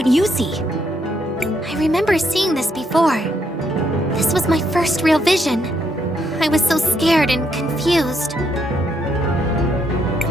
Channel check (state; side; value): normal; both; correlation 0.75